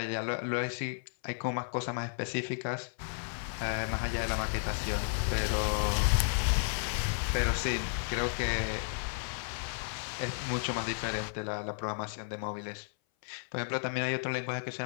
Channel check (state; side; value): silent; right; 56 dB below the other